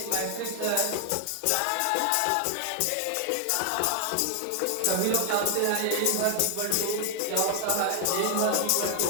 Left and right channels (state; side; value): different; both; correlation 0.00